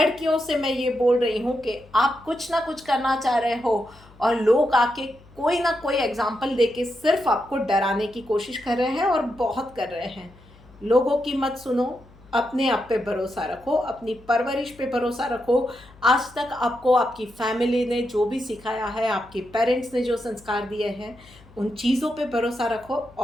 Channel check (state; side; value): noise; left; hum, 25 dB below the sound